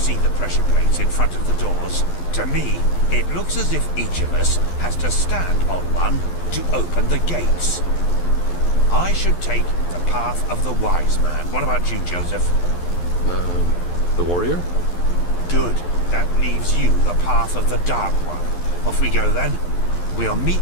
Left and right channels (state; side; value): late; right; 11 ms